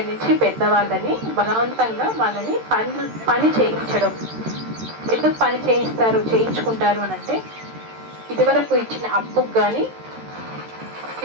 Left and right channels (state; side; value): late; left; 13 ms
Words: నుంచి పెద్దవాళ్ళని బలవంతంగా వాళ్ళని పని చేయించడం. ఎందుకు పని చేయించుకుంటారు అని అంటే, ఇదివరకు ఇచ్చిన అప్పుకు కానీ